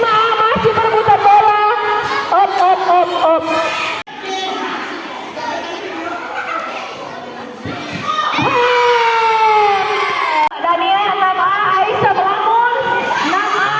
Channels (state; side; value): identical; both; correlation 1.00